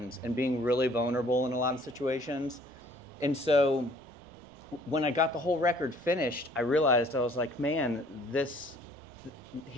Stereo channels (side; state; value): both; normal; correlation 0.57